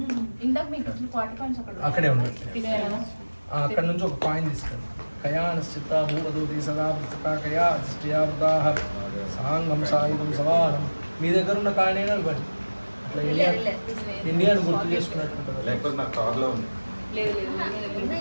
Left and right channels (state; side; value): inverted; both; correlation -1.00